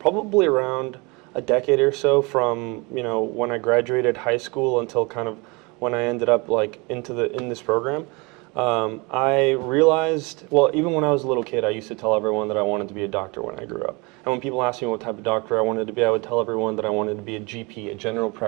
around a decade or so, from when I graduated high school until kind of when I ended up in this program. I realized, well, even when I was a little kid, I used to tell everyone that I wanted to be a doctor when I grew up. And when people asked me what type of doctor I wanted to be, I would tell everyone that I wanted to be a GP, a general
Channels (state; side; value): quieter; left; 27.7 dB